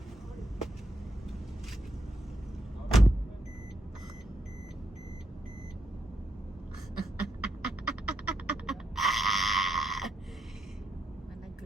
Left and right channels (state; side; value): normal; both; correlation 0.80